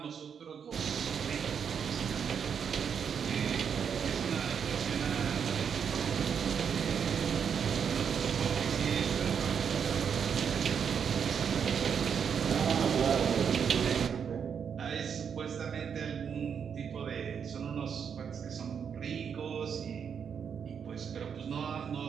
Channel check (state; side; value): quieter; left; 7.2 dB